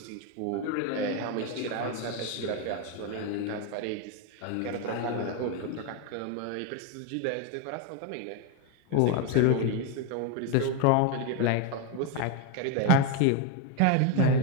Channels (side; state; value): both; different; correlation 0.02